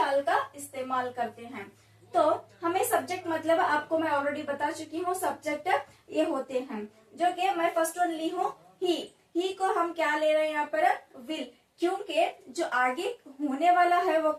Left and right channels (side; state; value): both; identical; correlation 1.00